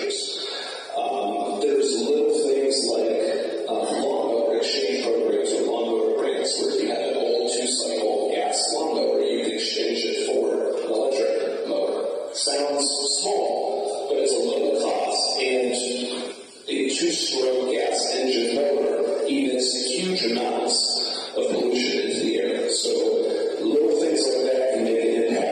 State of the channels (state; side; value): identical; both; correlation 1.00